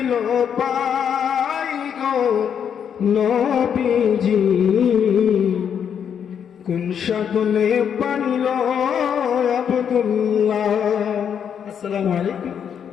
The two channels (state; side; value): quieter; right; 8.0 dB